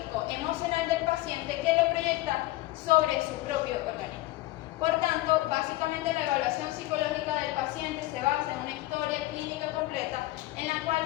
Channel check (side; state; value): right; quieter; 17.9 dB